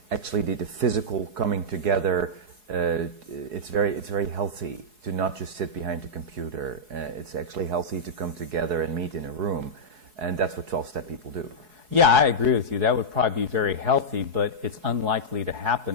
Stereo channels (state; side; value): late; left; 4.7 ms